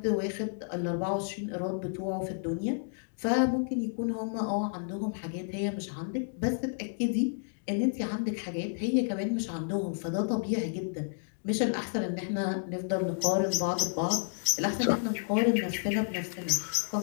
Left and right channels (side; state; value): right; silent; digital silence